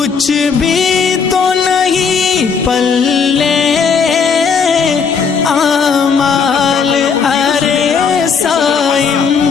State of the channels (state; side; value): quieter; right; 5.9 dB